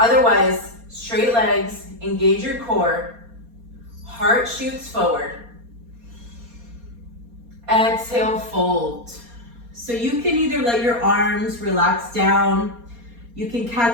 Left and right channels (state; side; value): late; left; 4.2 ms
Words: straight legs, engage your core, heart shoots forward. Exhale, fold. So you can either let your arms relax down, you can